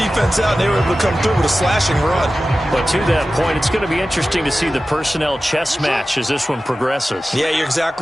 out, and they were able to come through with a slashing run. But to that point, it's going to be interesting to see the personnel chess match as this one progresses. Yeah, you're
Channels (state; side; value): normal; both; correlation 0.95